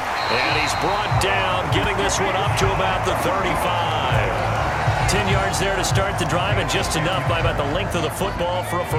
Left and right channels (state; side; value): identical; both; correlation 1.00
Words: And he's brought down, getting this one up to about the 35. 10 yards there to start the drive, and just enough by about the length of the football for a